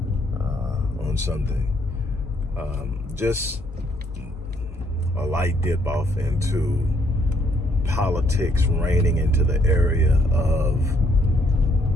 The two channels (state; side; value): normal; both; correlation 0.70